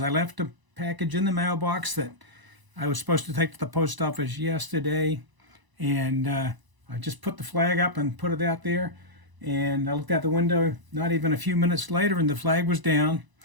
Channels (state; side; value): late; left; 1.0 ms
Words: I left a package in the mailbox that I was supposed to take to the post office yesterday. And I just put the flag up and put it out there. And I looked out the window not even a few minutes later and the flag was down.